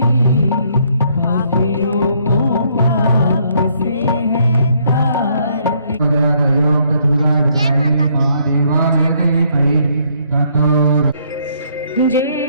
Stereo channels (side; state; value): both; inverted; correlation -0.68